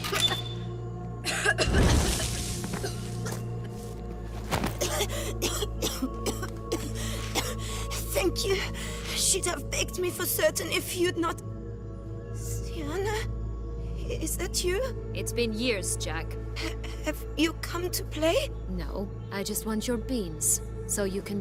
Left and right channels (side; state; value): both; identical; correlation 1.00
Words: Thank you. She'd have begged me for certain if you'd not... Sierra? Is that you? It's been years, Jack. Have you come to play? No, I just want your beans, so you can